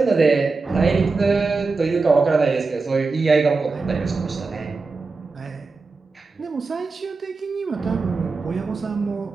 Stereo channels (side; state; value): left; quieter; 4.1 dB